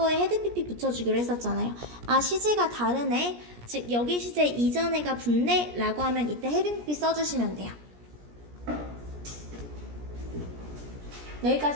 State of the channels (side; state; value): left; late; 17 ms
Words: 헤드 pp 붙여주기로 했었잖아요. 아, 시제가 다르네. 즉 여기 시제 이전에가 붙네 라고 하면 이때 헤드 pp 써주시면 돼요.